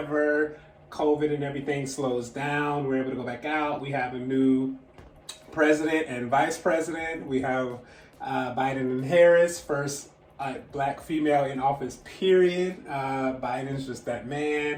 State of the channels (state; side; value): identical; both; correlation 1.00